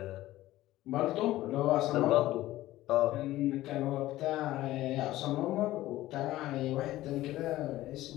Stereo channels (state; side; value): quieter; right; 15.9 dB